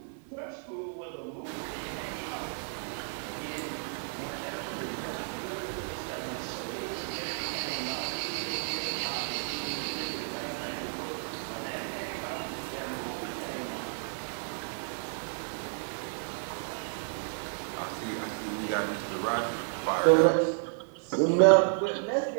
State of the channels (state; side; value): silent; left; digital silence